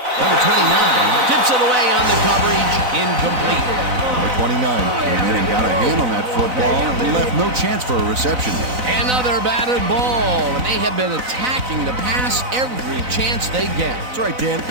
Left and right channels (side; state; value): left; late; 4.0 ms